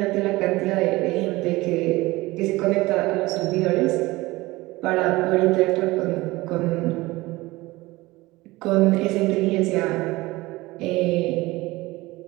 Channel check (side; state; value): left; quieter; 20.3 dB